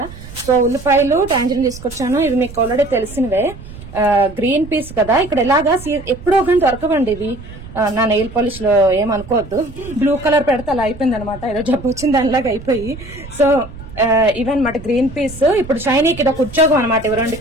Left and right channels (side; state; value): right; noise; rumble, 15 dB below the sound